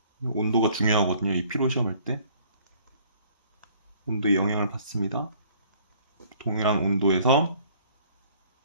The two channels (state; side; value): inverted; both; correlation -0.57